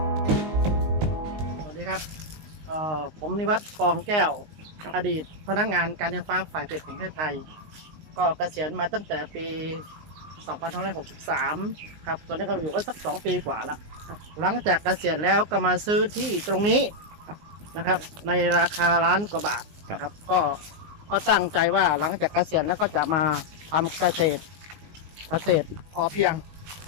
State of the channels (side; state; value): left; late; 19 ms